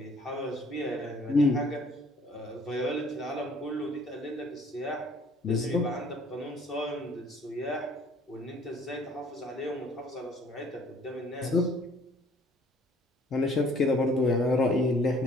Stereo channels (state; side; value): normal; both; correlation 0.57